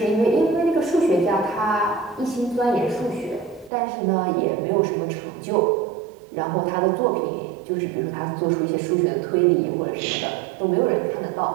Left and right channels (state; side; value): drops out; left; at 3.7 s